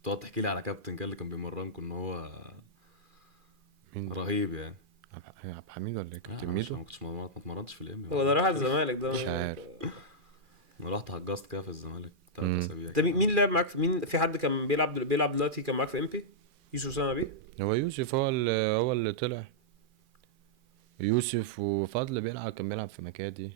تقعد تحكي لي على كابتن كان اللي كان بيمرنكم ان هو مين ده؟ رهيب يعني. عبد الحميد ولا ايه؟ كابتن انا ميدو؟ ما كنتش ما اتمرنتش في الامبي. هو ده راح الزمالك ده مش عارف. انا رحت حجزت كده في الزمالك 3 اسابيع. ده مين لعب معاك مين في حد كان بيلعب دلوقتي كان معاك في امبي؟ يوسف سامع بيه. هو يوسف هو اللي طلع. يوسف وفضل كان بيلعب في مكادي.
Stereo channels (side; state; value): left; late; 2.4 ms